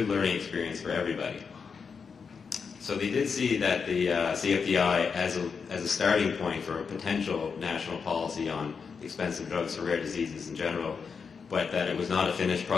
learning experience for everybody. So they did see that the CFDI as a starting point for a potential national policy on expensive drugs for rare diseases in general, but that it was not a finished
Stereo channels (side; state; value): right; quieter; 5.7 dB